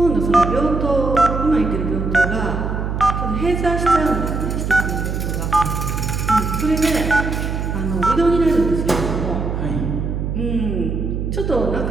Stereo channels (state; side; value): noise; right; hum, 2 dB below the sound